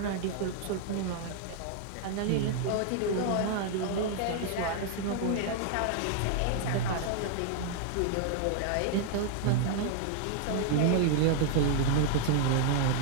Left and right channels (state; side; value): different; both; correlation 0.00